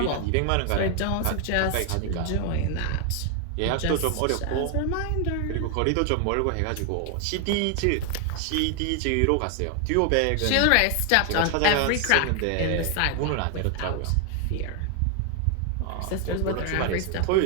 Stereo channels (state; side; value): different; both; correlation 0.00